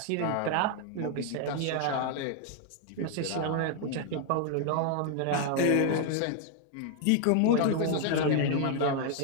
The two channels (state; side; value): different; both; correlation 0.00